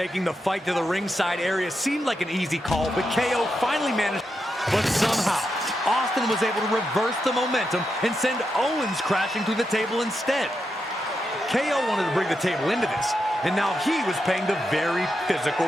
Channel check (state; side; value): normal; both; correlation 0.86